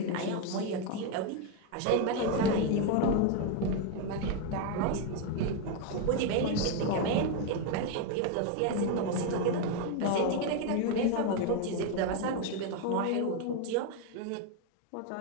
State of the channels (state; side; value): different; both; correlation 0.01